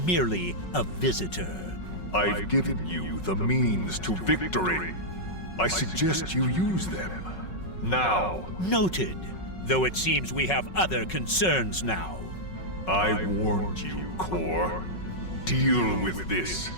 a visitor. I've given you the means to victory. I suggest you use them. Now. Noted. Though it seems we have other concerns now. I warned you, Core. Deal with this.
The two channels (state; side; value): late; right; 5.4 ms